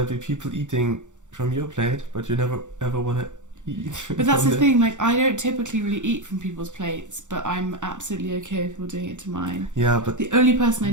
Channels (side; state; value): left; late; 0.85 ms